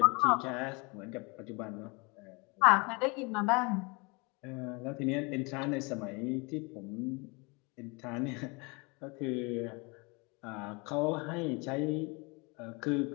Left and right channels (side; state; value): right; quieter; 28.9 dB